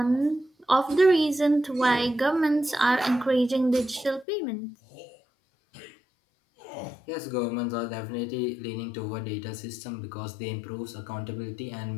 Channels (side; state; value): right; drops out; at 4.2 s